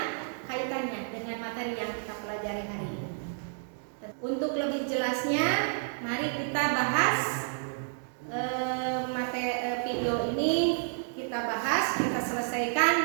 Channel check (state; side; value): silent; left; digital silence